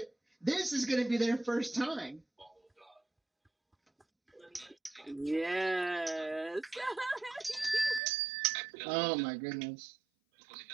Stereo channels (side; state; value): left; drops out; at 8.0 s